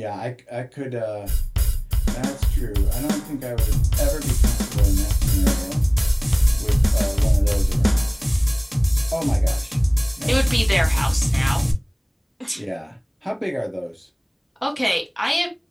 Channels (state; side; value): identical; both; correlation 1.00